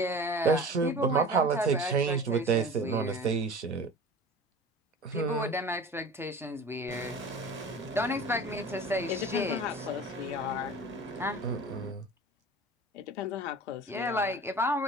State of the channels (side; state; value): both; normal; correlation 0.38